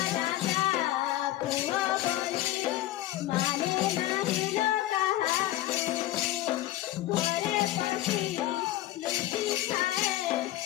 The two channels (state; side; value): quieter; right; 15.2 dB